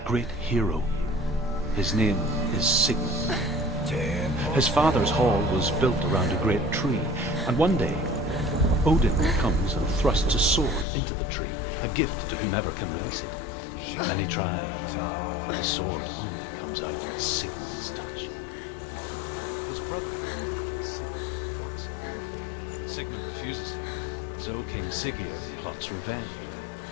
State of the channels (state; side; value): drops out; right; at 10.9 s